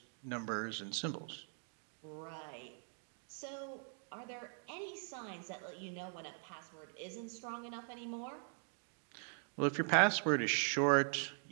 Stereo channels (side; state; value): left; silent; 50 dB below the other